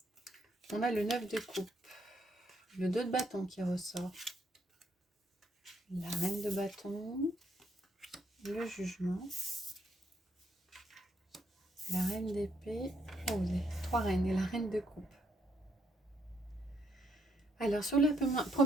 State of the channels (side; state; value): both; normal; correlation 0.73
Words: a le 9 de coupe, le 2 de bâton qui ressort, la reine de bâton, le jugement, la reine d'épée, les 3 reines et la reine de coupe. Alors, sur la